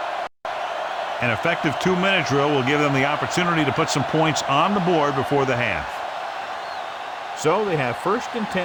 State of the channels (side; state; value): both; identical; correlation 1.00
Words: An effective 2-minute drill will give them the opportunity to put some points on the board before the half. So they have first and